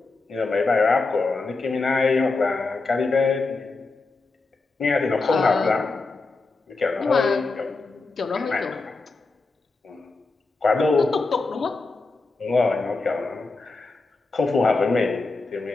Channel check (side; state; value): right; quieter; 3.7 dB